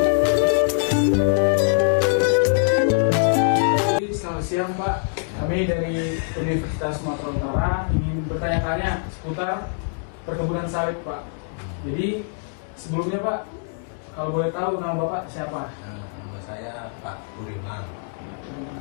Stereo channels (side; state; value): right; silent; digital silence